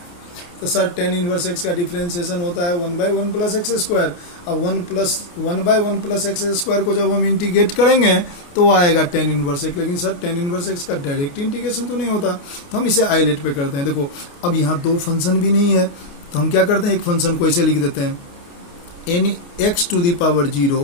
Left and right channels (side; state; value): right; late; 29 ms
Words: तो सर tan इनवर्स x का डिफरेंशिएशन होता है 1/1 प्लस एक्स स्क्वायर, अब 1/1 प्लस एक्स स्क्वायर को जब हम इंटीग्रेट करेंगे तो आएगा tan इनवर्स x, लेकिन सर tan इनवर्स x का डायरेक्ट इंटीग्रेशन तो नहीं होता, तो हम इसे आइलेट पे करते हैं। देखो अब यहाँ दो फंक्शन भी नहीं है, तो हम क्या करते हैं, एक फंक्शन को ऐसे लिख देते हैं n x to the power